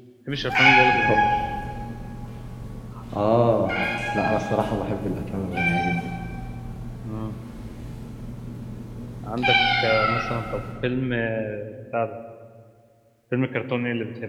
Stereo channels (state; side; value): identical; both; correlation 1.00